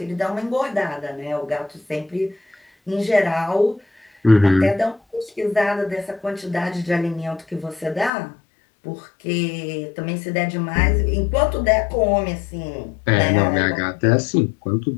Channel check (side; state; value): right; drops out; at 8.1 s